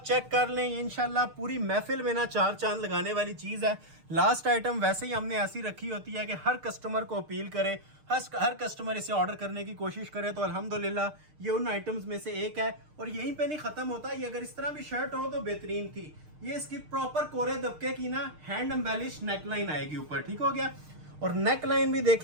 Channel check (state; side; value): late; left; 6.6 ms